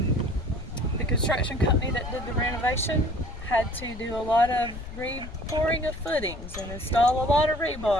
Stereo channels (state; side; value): noise; left; rumble, 11 dB below the sound